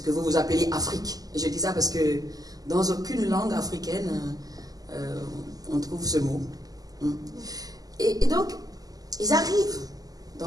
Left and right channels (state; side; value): late; left; 0.18 ms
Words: que vous appelez Afrique. Et je dis ça parce que dans aucune langue africaine, on trouve ce mot. Et donc, ils arrivent